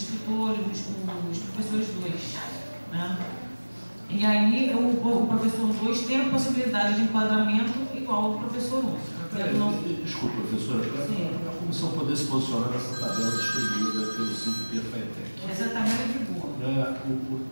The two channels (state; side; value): inverted; both; correlation -1.00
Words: os professores 2. Né? E aí o professor 2 tem a possibilidade de enquadramento igual ao professor 1. Desculpa, professora, para a comissão poder se posicionar nessa tabela distribuída pelo 5P FATEC. Essa tabela é de boa.